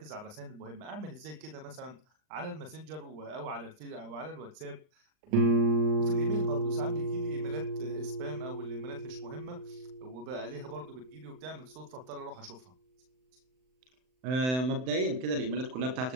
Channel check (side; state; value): left; late; 39 ms